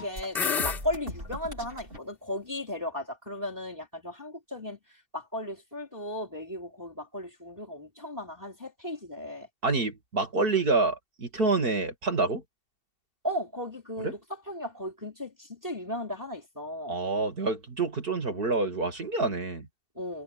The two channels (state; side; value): late; left; 2.7 ms